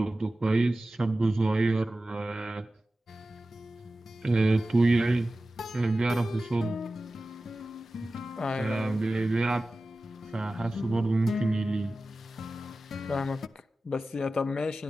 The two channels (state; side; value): normal; both; correlation 0.95